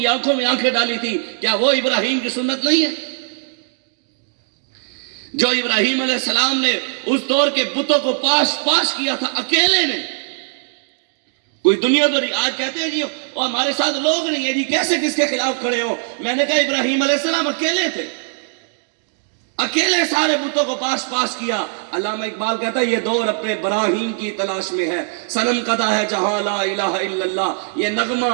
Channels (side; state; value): left; silent; digital silence